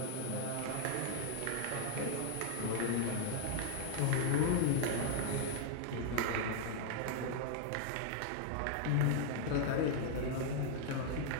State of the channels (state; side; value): different; both; correlation -0.01